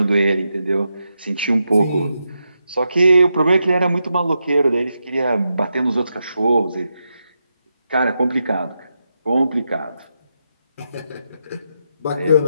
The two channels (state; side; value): inverted; both; correlation -0.85